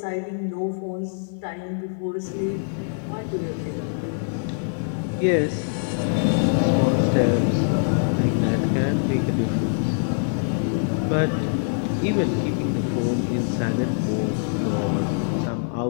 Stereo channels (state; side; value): silent; right; digital silence